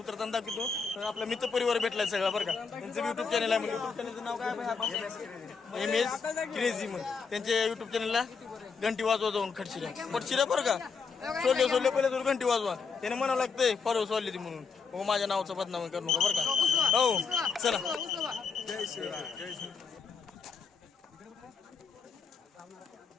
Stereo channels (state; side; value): quieter; right; 5.4 dB